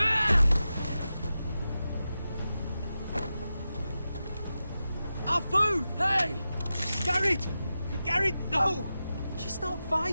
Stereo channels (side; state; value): both; inverted; correlation -0.92